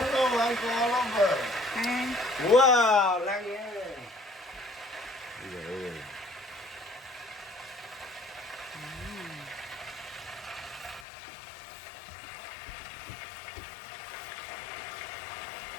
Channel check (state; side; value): drops out; right; at 11.1 s